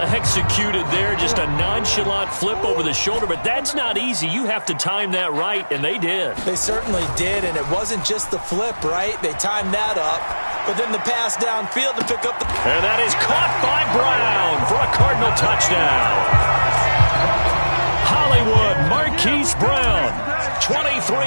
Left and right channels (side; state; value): both; inverted; correlation -1.00